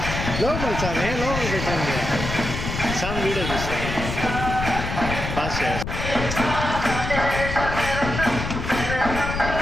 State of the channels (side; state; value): left; noise; rumble, 5 dB below the sound